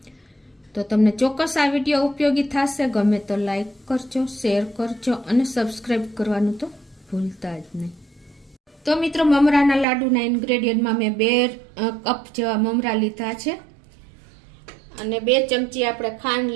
તો તમને ચોક્કસ આ વિડીયો ઉપયોગી થશે। ગમે તો લાઈક કરજો, શેર કરજો અને સબસ્ક્રાઈબ કરવાનું તો ભૂલતા જ નહીં। તો મિત્રો, મમરાના લાડુના ઇન્ગ્રેડિયન્ટમાં મેં 2 કપ જેવા મમરા લીધા છે અને 2 ચમચી આપણે ખાંડ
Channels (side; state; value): left; drops out; at 9.9 s